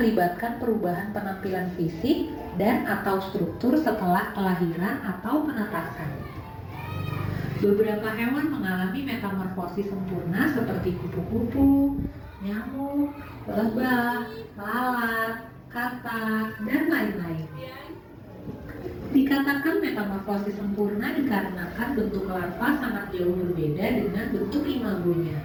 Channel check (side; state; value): both; identical; correlation 1.00